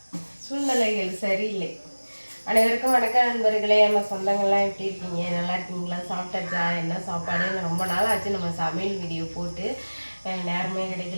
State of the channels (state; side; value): inverted; both; correlation -1.00